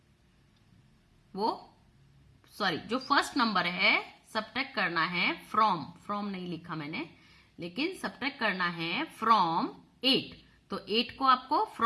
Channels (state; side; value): identical; both; correlation 1.00